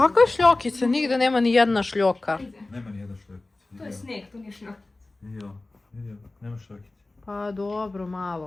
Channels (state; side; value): quieter; right; 3.0 dB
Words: šljokice? Nigde nema ni jedna šljoka. Nema nijedna šljokica. To je sneg, to nije šljok. Vidio, nema šljokice. Pa dobro,